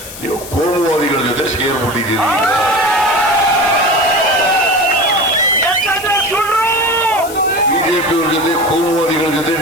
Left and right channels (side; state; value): left; noise; hiss, 13 dB below the sound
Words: ನೀವು ಕೋಮುವಾದಿಗಳ ಜೊತೆ ಸೇರ್ಬಿಟ್ಟಿದ್ದೀರಿ. ಬಿಜೆಪಿಯವ್ರ ಜೊತೆ ಕೋಮುವಾದಿಗಳ ಜೊತೆ